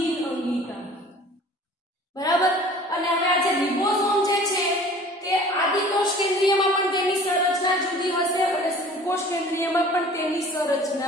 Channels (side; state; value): both; normal; correlation 0.47